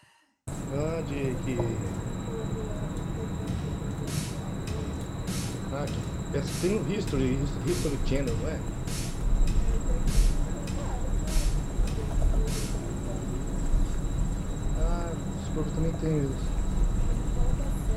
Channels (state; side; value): identical; both; correlation 1.00